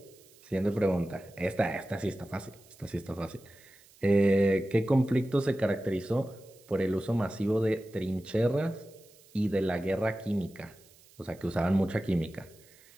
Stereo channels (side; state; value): right; noise; hiss, 27 dB below the sound